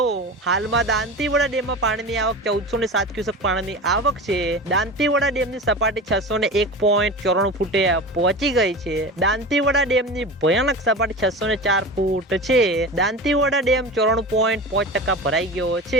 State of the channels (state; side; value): normal; both; correlation 0.30